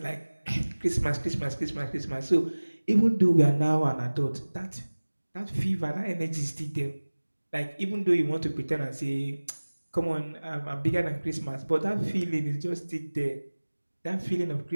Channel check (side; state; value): both; inverted; correlation -1.00